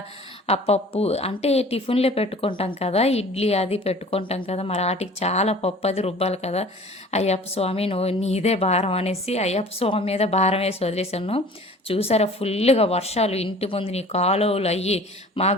ఆ పప్పు అంటే టిఫిన్లే పెట్టుకుంటాం కదా, ఇడ్లీ అది పెట్టుకుంటాం కదా, మరి వాటికి చాలా పప్పు అది రుబ్బాలి కదా. అయ్యప్ప స్వామి నువ్వు నీదే భారం అనేసి అయ్యప్ప స్వామి మీద భారం వేసి వదిలేశాను. చూసారా ఫుల్గా వర్షాలు ఇంటి ముందు నీ కాలువలు అయ్యి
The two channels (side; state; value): both; normal; correlation 0.46